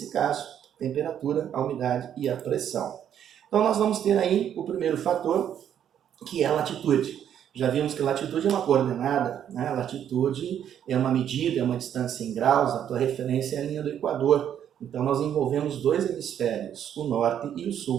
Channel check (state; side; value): quieter; left; 9.6 dB